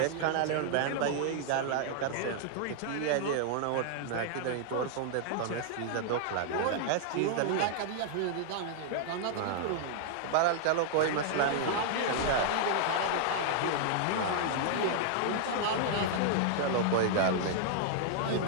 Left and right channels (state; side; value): different; both; correlation -0.01